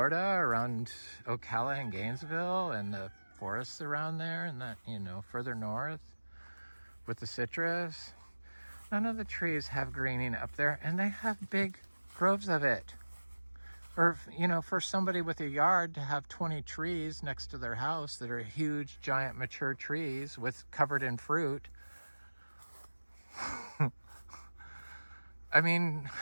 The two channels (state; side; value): inverted; both; correlation -1.00